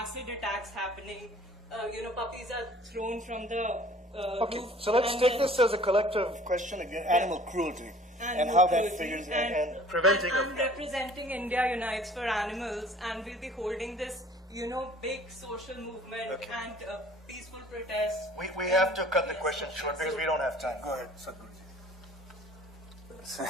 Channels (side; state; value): both; normal; correlation 0.51